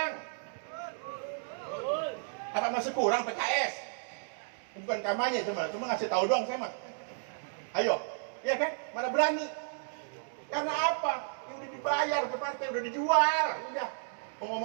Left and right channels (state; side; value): silent; left; digital silence